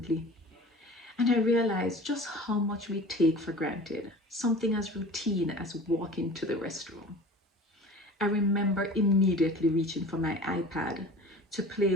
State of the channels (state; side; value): normal; both; correlation 0.40